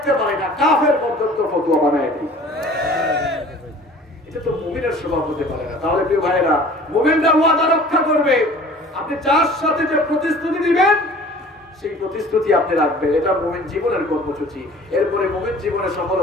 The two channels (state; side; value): normal; both; correlation 0.47